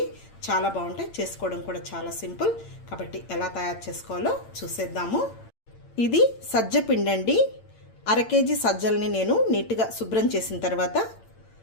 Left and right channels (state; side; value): late; right; 8.8 ms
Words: చాలా బాగుంటాయి, చేసుకోవడం కూడా చాలా సింపుల్. కాబట్టి ఎలా తయారు చేసుకోవాలో చూసేద్దాము. ఇది సజ్జ పిండి అండి. 1/2 కేజీ సజ్జల్ని నేను నీట్గా శుభ్రం చేసిన తర్వాత